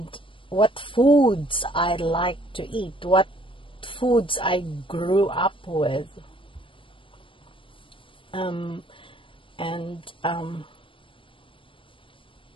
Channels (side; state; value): right; late; 0.25 ms